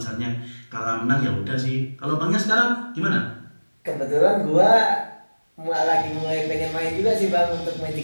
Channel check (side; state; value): both; inverted; correlation -1.00